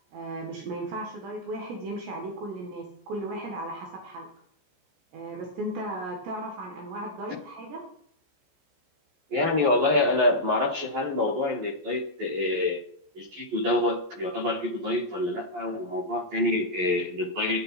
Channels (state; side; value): late; left; 14 ms